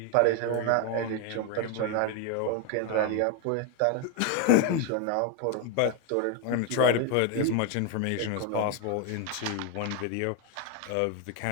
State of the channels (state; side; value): different; both; correlation 0.01